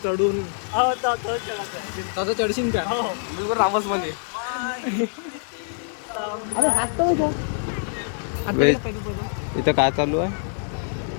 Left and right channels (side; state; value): right; silent; digital silence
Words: चढून तसं चढशील का बिलकुल रामस मध्ये. इथं काय चालू आहे